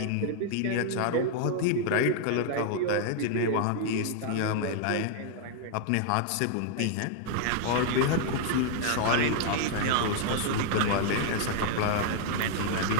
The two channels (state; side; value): different; both; correlation -0.01